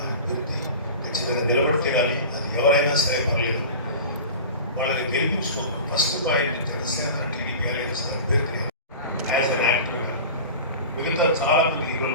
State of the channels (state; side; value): inverted; both; correlation -0.34